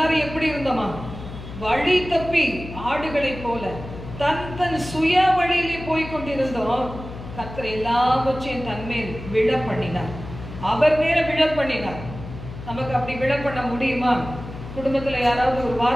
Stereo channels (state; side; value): noise; left; hum, 12 dB below the sound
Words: எப்படி இருந்தோமா? வழி தப்பி ஆடுகளைப் போல தன் சுய வழியிலே போய் கொண்டிருந்தோம். கர்த்தர் எல்லாவற்றையும் தன்மேல் விழ பண்ணினார். அவர் மேல விழ பண்ணினார். நமக்கு அப்படி விழ பண்ண முடியுமா? குடும்பத்துல யாராவது ஒரு